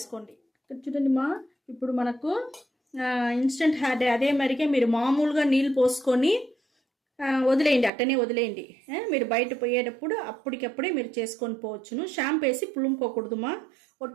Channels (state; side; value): drops out; left; at 7.9 s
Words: ఇక్కడ చూడండిమా, ఇప్పుడు మనకు ఇన్స్టెంట్ హెయిర్ డై అదే మరిగే మీరు మామూలుగా నీళ్ళు పోసుకొని వదిలేయండి, అట్టనే వదిలేయండి. మీరు బయట పోయేటప్పుడు అప్పటికప్పుడే మీరు చేసుకొని పోవచ్చును. షాంపూ వేసి పులుముకోకూడదుమా.